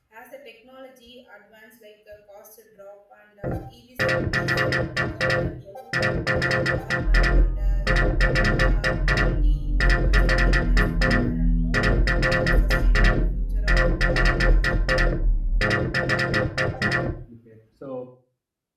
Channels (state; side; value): identical; both; correlation 1.00